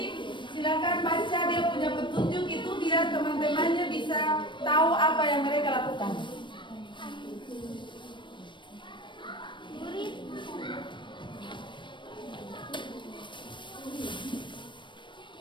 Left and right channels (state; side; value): late; right; 0.23 ms